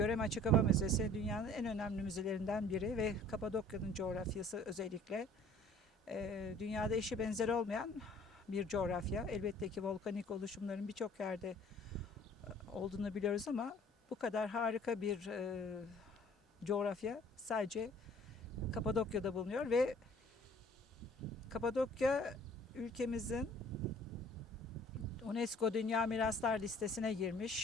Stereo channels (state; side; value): normal; both; correlation 0.53